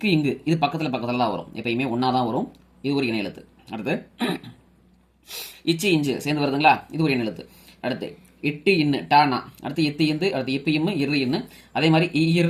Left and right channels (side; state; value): both; identical; correlation 1.00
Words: இங்கு இது பக்கத்தில் தான் வரும், எப்பயுமே ஒன்றா தான் வரும். இது ஒரு இணை எழுத்து. அடுத்து இச்சு இஞ்சு சேர்ந்து வருதுங்களா, இது ஒரு இணை எழுத்து. அடுத்து இட்டு இன்னு டானா, அடுத்து இத்து இந்து, அடுத்து இப்ப இம்மு இரு இன்னு, அதே மாதிரி